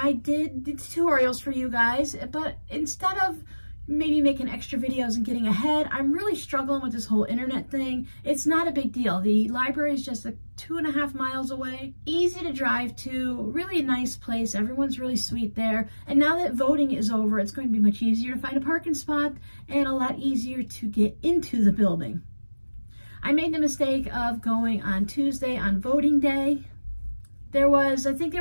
did tutorials for you guys, but instead of maybe making extra videos and getting ahead, I'm really struggling with this whole internet thing. It's not a big deal. The library is just 2.5 miles away. Easy to drive to, really a nice place. Everyone's really sweet there. And now that voting is over, it's going to be much easier to find a parking spot and a lot easier to get into the building. I made the mistake of going on Tuesday on voting day. There was, I think they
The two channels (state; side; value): inverted; both; correlation -1.00